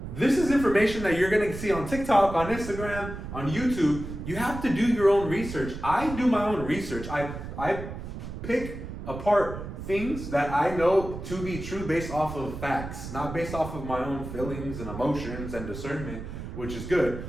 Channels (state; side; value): noise; right; rumble, 9 dB below the sound